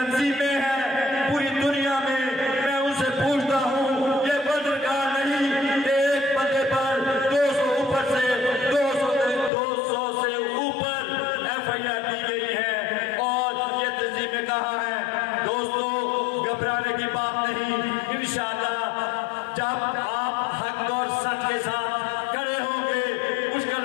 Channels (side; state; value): right; drops out; at 9.5 s